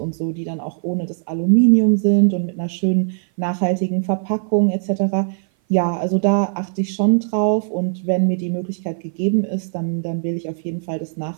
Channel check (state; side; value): silent; left; 57 dB below the other